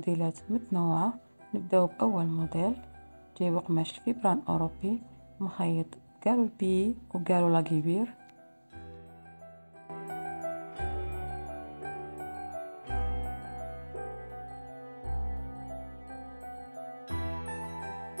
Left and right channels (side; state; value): both; inverted; correlation -1.00